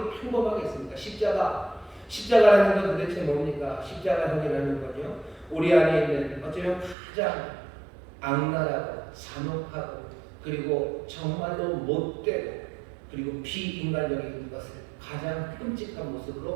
평범하게 있습니다. 십자가라는 건 도대체 뭡니까? 십자가형이라는 건요, 우리 안에 있는 어쩌면 가장 악랄하고 잔혹하고 그리고 정말로 못되고 그리고 비인간적인 것을 가장 끔찍한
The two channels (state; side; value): drops out; left; at 7.0 s